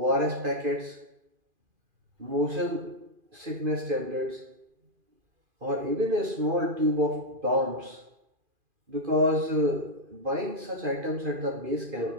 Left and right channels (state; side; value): late; left; 2.4 ms